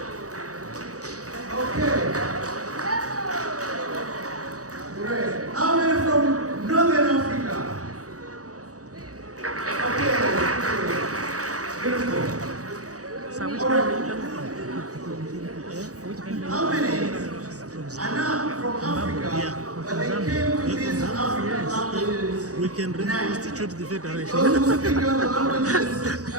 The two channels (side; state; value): left; late; 0.66 ms